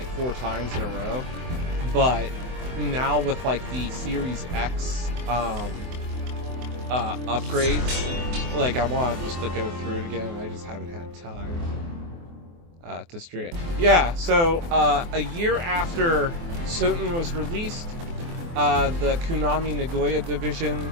4 times in a row, but now with like the Series X upgrades, like I want just to go through it again. I just haven't had time to stream it. Yeah, so a year after Soten was released, the Konami Nagoya division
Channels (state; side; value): late; left; 24 ms